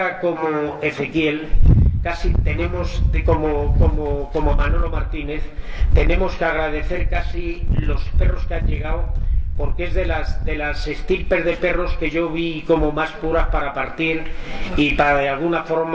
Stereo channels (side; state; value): both; identical; correlation 1.00